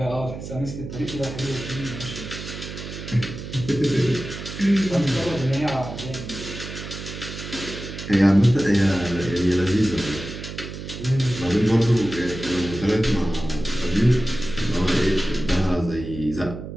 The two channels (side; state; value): right; noise; hum, 9 dB below the sound